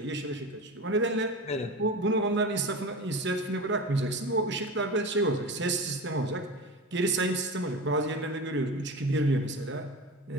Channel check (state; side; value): normal; both; correlation 0.28